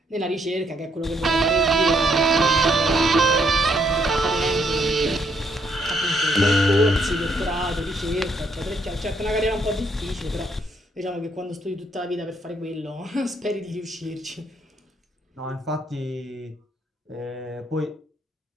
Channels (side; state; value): both; normal; correlation 0.72